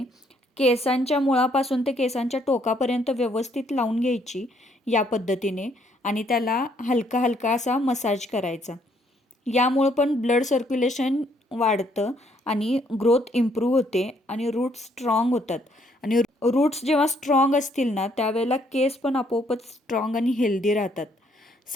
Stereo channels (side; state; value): both; normal; correlation 0.68